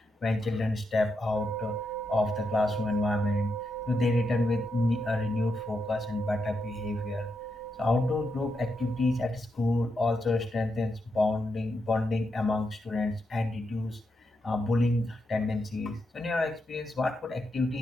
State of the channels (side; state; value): both; normal; correlation 0.83